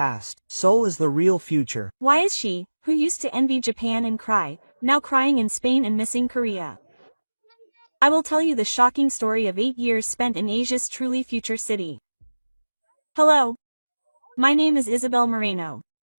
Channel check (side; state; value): both; inverted; correlation -1.00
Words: Seoul is the real future. Why is she, who used to envy Japan and cry, now crying in Spain and missing Korea? I will tell you the shocking story of 8 years spent in Asia's truly future city. Hello. My name is Isabel Moreno.